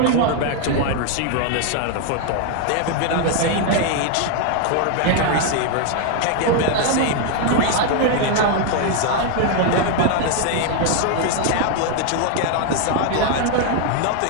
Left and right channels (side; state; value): both; different; correlation 0.00